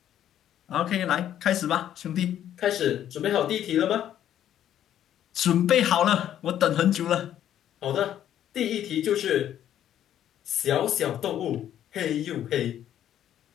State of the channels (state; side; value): quieter; right; 10.9 dB